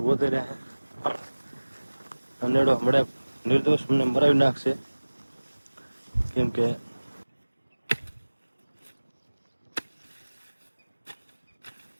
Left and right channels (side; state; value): both; inverted; correlation -1.00